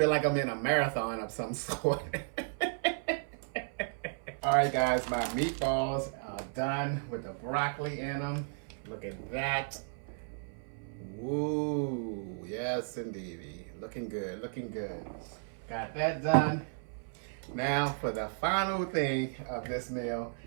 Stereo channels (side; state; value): left; silent; 55 dB below the other